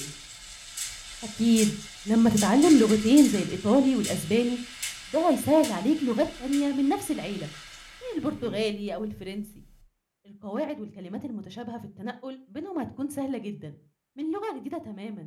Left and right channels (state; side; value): identical; both; correlation 1.00